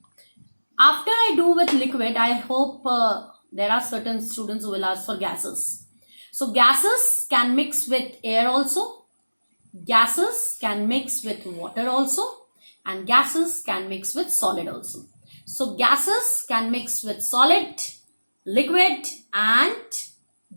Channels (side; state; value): both; inverted; correlation -1.00